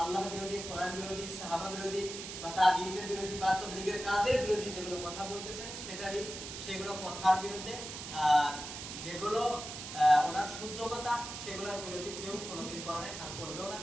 আল্লাহ বিরোধী, কোরআন বিরোধী, সাহাবা বিরোধী বা তাবিঈনদের বিরোধী বা তাবলীগের কাজের বিরোধী যেগুলো কথা বলতেছেন সেগুলো কথার বিরুদ্ধে, আর যেগুলো ওনার শুদ্ধ কথা সেগুলোর বিরোধী কেউ কোনোদিন করে নাই আর করবেও না।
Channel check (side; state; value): right; noise; hiss, 8 dB below the sound